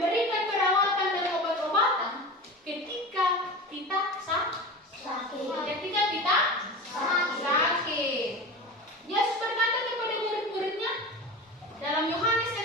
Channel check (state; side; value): normal; both; correlation 0.30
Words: perawatan dan obat-obatan ketika kita sakit. Ketika kita sakit. Yesus berkata kepada murid-muridnya dalam Yohanes